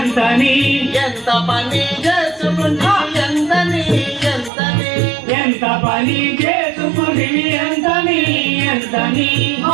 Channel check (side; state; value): left; drops out; at 4.5 s